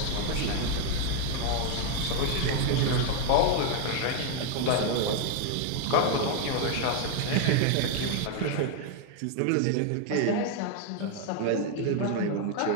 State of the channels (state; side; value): different; both; correlation 0.01